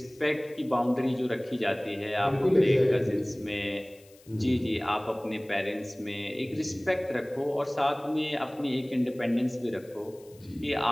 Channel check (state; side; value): noise; left; hiss, 27 dB below the sound